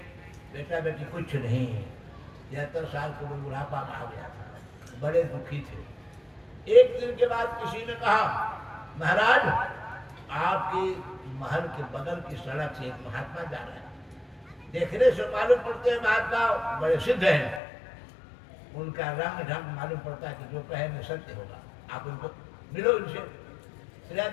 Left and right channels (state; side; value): drops out; right; at 17.6 s